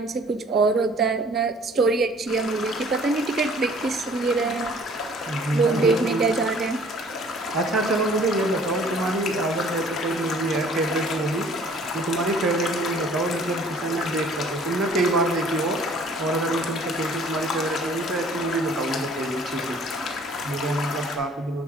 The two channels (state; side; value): normal; both; correlation 0.54